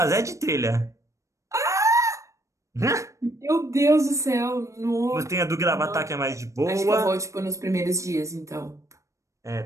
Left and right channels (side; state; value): left; late; 0.15 ms